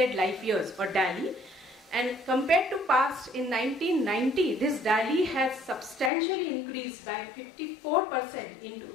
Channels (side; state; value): right; drops out; at 6.1 s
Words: Life Years, or DALY. And compared to past, in 1990, this DALY has substantially increased by 54% in